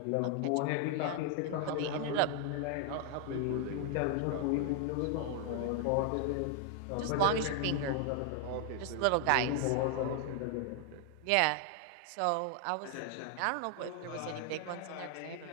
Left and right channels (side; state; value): both; different; correlation 0.00